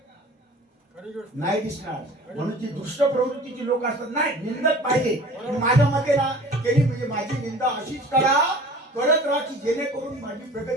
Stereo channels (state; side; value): normal; both; correlation 0.44